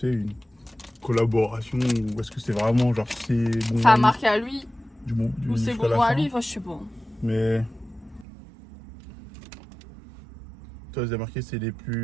collaboration, ou est-ce que c'est vraiment genre c'est bonbons Ça a marqué à lui, du ou c'est jusqu'à la bonbon à fin. lui, enfin, je sais pas. Mais. Toi, c'est marqué, c'est les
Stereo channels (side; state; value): left; drops out; at 8.2 s